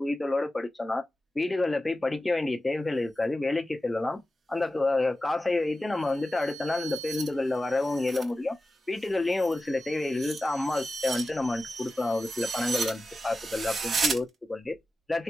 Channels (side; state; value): both; normal; correlation 0.94